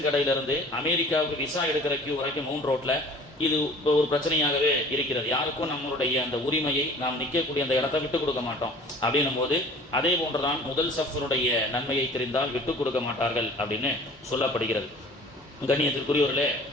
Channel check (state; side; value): normal; both; correlation 0.47